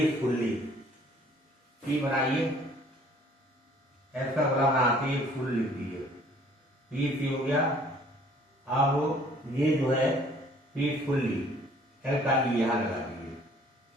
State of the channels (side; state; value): both; normal; correlation 0.56